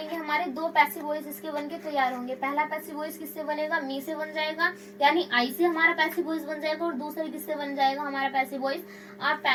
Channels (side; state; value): both; identical; correlation 1.00